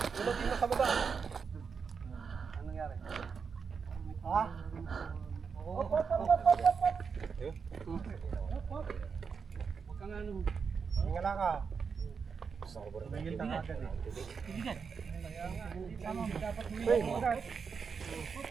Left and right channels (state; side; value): quieter; left; 5.8 dB